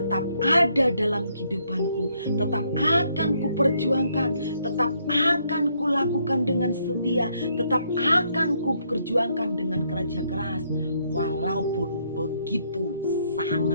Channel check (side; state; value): both; inverted; correlation -0.72